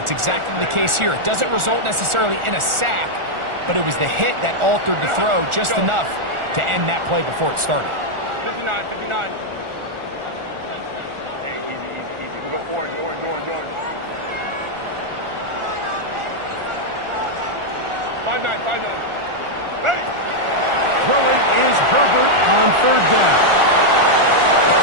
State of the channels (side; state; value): left; late; 1.4 ms